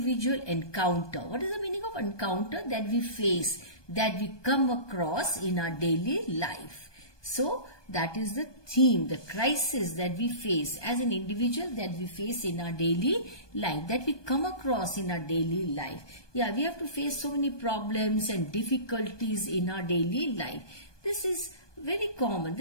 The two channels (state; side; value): late; right; 1.2 ms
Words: encounter. What is the meaning of encounter? That we face, that we come across in our daily life. So that is the theme, the crisis that we face as an individual, that we face in our daily life, that we come across in our daily life. Yeah, we have to face so many problems and difficulties in our daily life. This is very common.